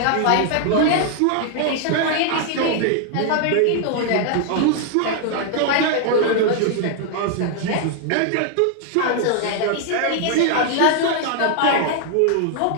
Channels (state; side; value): different; both; correlation 0.00